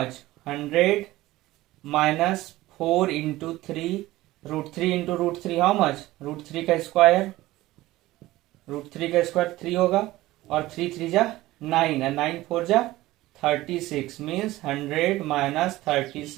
100 minus 4 into 3, √3 into √3 how much √3 का स्क्वायर, √3 का स्क्वायर 3 होगा, और 3 3 जा 9 और 9 4 जा 36, means 100 minus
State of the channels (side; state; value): left; quieter; 17.3 dB